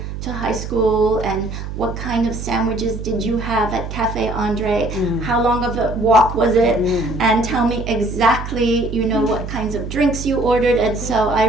to high school? And what kind of sandwiches did you have at Cafe Andre? How long of a walk was it? And tell me exactly, what kinds of drinks you ordered. And so I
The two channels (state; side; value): noise; right; hum, 7 dB below the sound